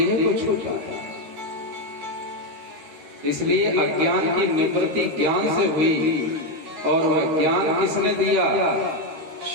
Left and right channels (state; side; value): late; left; 13 ms